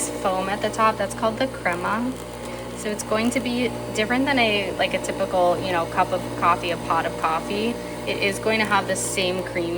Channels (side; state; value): both; identical; correlation 1.00